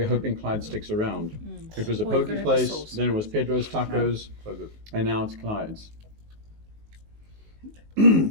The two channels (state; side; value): late; left; 19 ms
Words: hoping Clyde sticks around. It was a poke place, then it was Pedro's Tacos, and now it's Clyde's.